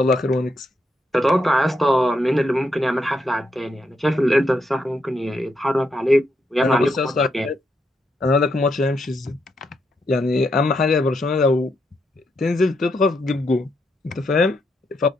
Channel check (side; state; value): both; normal; correlation 0.79